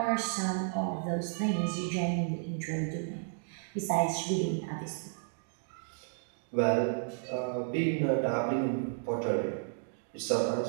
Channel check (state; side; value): silent; left; digital silence